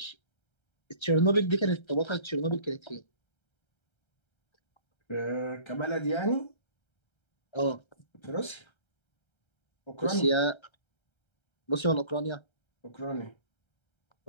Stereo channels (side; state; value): right; late; 1.3 ms